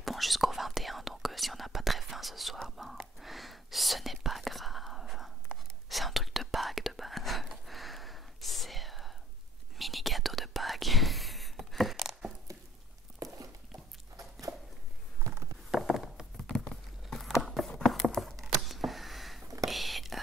bon jusqu'au 21, donc si on n'a pas très faim ce soir, ben ce n'est pas grave. C'est un truc de Pâques de base. C'est mini gâteau de Pâques. Et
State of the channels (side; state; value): both; normal; correlation 0.56